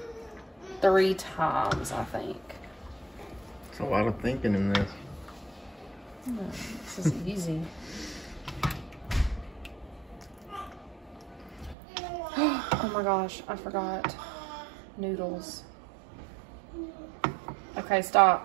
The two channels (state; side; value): drops out; left; at 11.8 s